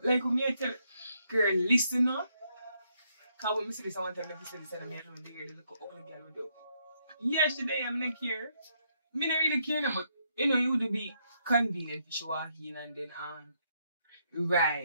Like, me I tell girl, listen now. Because when I say this, I want to make this and I know the girl look how the girl would do. Yesterday, I'm not care. Me not really care, but you know, you would be convenient if you walk in and then on.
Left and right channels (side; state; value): both; inverted; correlation -0.75